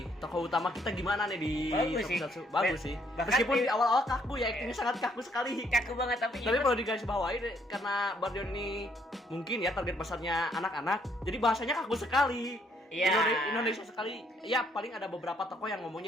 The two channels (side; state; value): both; normal; correlation 0.68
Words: tokoh utama kita gimana nih di Bagus sih. Tokusatsu? Bagus sih. Bahkan Meskipun di- di awal-awal kaku ya, actingnya sangat kaku sekali. Kaku banget tapi Tapi perlu digarisbawahi karena Bardion ini mungkin ya target pasarnya anak-anak, jadi bahasanya kaku sekali. Iya. Indonesia sekali. Ya paling ada beberapa tokoh yang